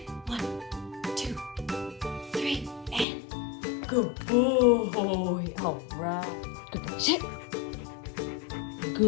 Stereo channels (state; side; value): drops out; right; at 3.1 s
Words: 1, 2, 3, and good boy. All right, good boy, sit.